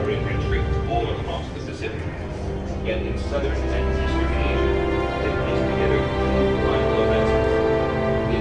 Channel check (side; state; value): both; identical; correlation 1.00